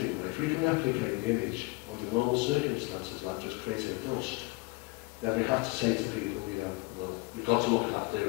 way, if we can replicate the image under normal circumstances, like just creating a dust, then we have to say to people, well, we've got to look at that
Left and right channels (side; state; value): right; quieter; 25.1 dB